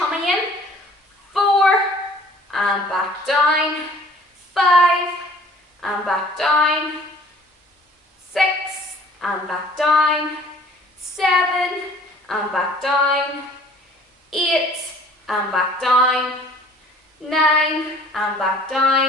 in. 4 and back down, 5 and back down, 6 and back down, 7 and back down, 8 and back down, 9 and back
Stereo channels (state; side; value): normal; both; correlation 0.53